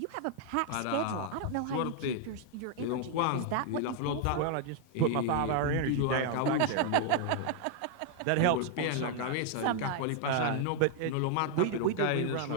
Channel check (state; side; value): different; both; correlation 0.00